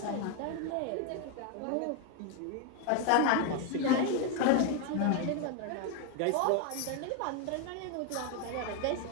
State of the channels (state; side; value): different; both; correlation 0.01